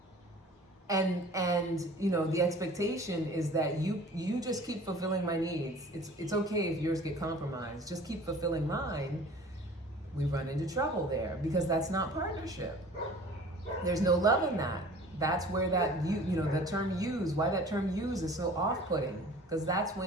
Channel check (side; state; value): both; normal; correlation 0.46